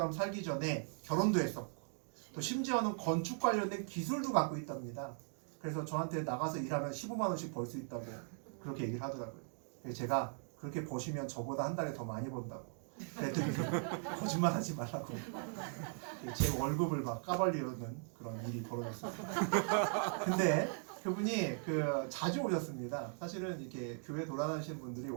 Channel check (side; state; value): left; silent; 52 dB below the other